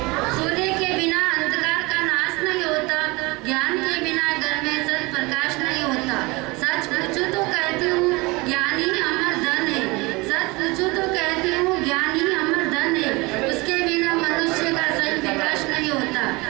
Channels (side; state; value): left; quieter; 24.5 dB